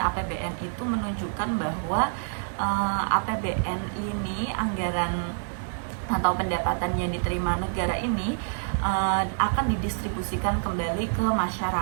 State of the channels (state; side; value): silent; left; digital silence